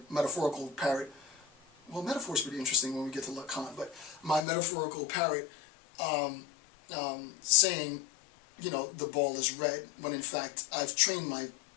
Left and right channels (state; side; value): drops out; right; at 4.4 s